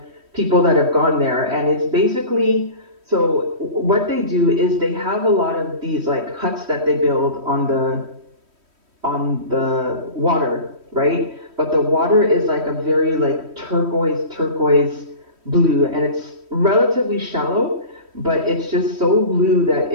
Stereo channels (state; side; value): late; left; 3.1 ms